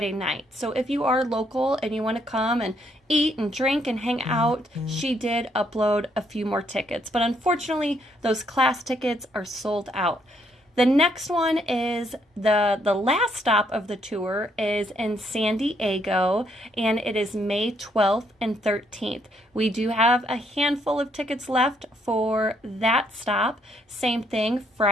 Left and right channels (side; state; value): both; normal; correlation 0.72